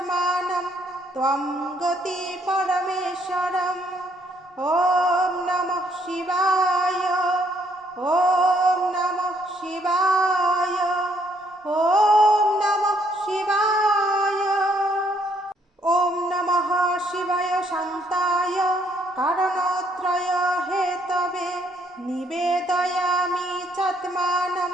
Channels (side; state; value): both; normal; correlation 0.69